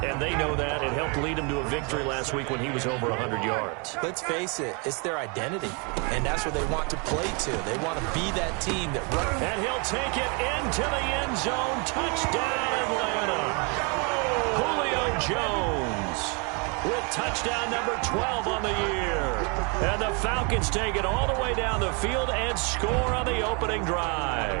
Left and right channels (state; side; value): quieter; left; 33.7 dB